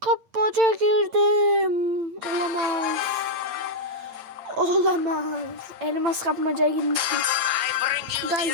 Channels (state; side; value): late; left; 8.8 ms